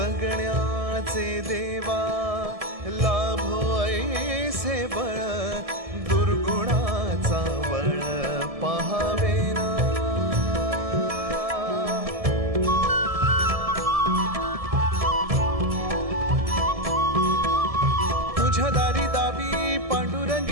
देवा लाभो ऐसे बळ, दुर्गुणाचा बळ पहावेना। तुझ्या दारी दावी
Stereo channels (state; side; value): late; left; 1.7 ms